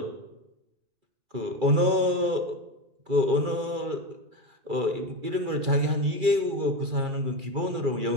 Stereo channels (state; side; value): late; left; 2.3 ms